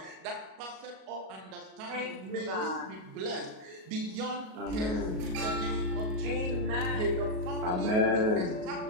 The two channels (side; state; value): left; late; 37 ms